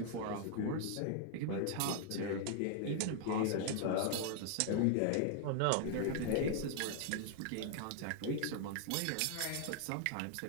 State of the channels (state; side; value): different; both; correlation 0.00